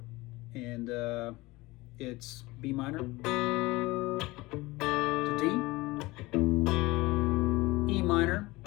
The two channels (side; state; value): right; quieter; 21.0 dB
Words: And it's B minor to D, E minor,